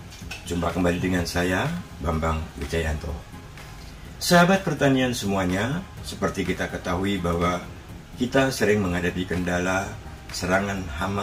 Jumpa kembali dengan saya, Bambang Wijayanto. Sahabat pertanian semuanya, seperti kita ketahui bahwa kita sering menghadapi kendala serangan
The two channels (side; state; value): both; identical; correlation 1.00